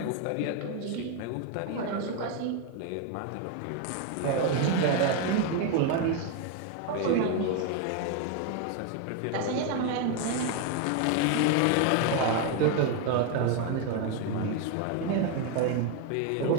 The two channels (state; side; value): different; both; correlation 0.01